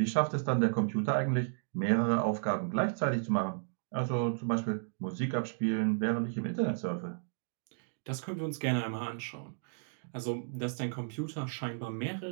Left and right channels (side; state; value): left; silent; digital silence